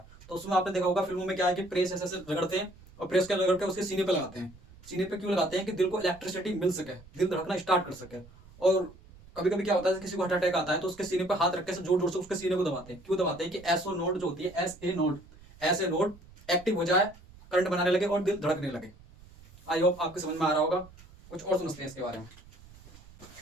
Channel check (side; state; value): right; noise; rumble, 22 dB below the sound